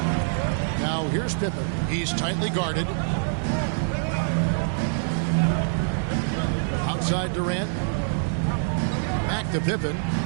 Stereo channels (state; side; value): silent; left; digital silence